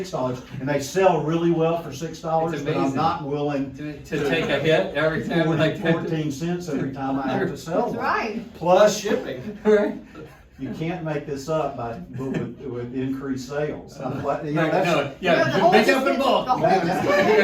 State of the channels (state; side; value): identical; both; correlation 1.00